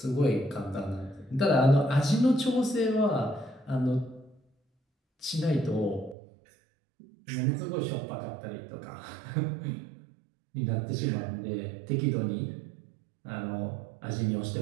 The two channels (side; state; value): left; drops out; at 6.2 s